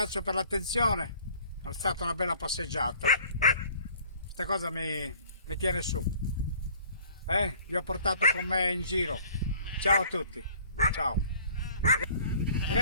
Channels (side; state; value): both; inverted; correlation -0.53